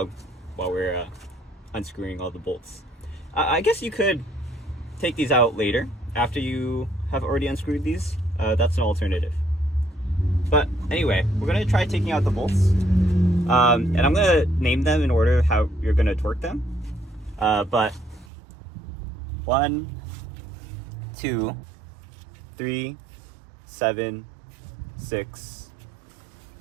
while we're unscrewing all the bolts. I guess you could take these out later after you have already unscrewed these. That's an alternative. But anyway, we're going to try taking out the bolts. And I'm going to name them in order how you're going to torque them. But 1, 2, 3, 7, 6,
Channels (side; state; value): left; drops out; at 18.3 s